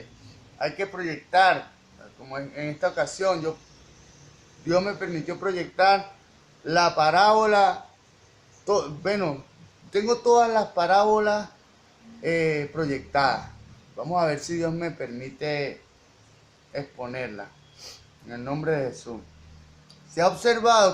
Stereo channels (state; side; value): identical; both; correlation 1.00